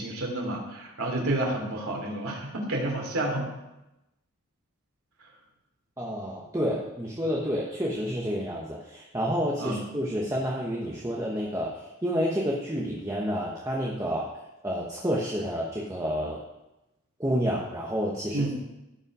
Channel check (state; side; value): normal; both; correlation 0.60